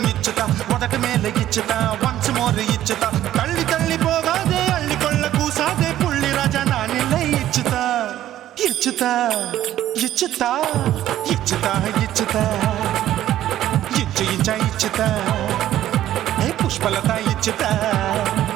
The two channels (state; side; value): quieter; left; 12.8 dB